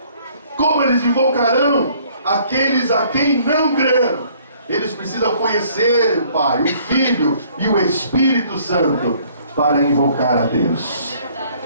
Como eles invocarão aqueles a quem não creram? Eles precisam conhecer o Pai, o Filho e o Espírito Santo para invocar a Deus.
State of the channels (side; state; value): both; inverted; correlation -0.60